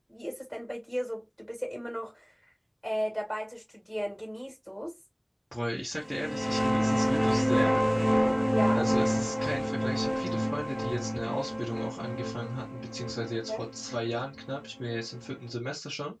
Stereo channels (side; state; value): both; identical; correlation 1.00